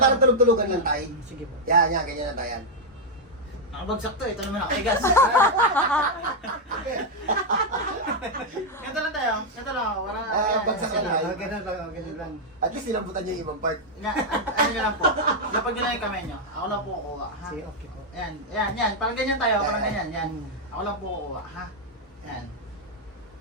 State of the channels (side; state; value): both; normal; correlation -0.01